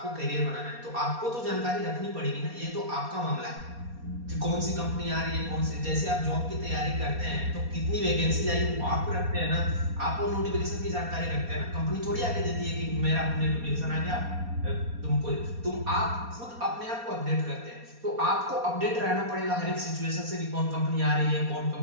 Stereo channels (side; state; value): left; late; 4.2 ms